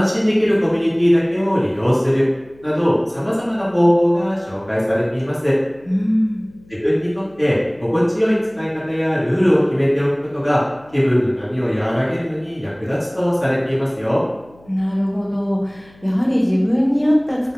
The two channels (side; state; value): left; noise; hum, 27 dB below the sound